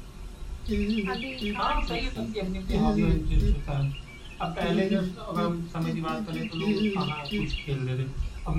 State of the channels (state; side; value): identical; both; correlation 1.00